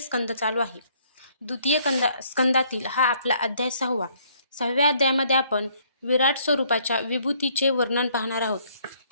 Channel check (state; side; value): inverted; both; correlation -0.65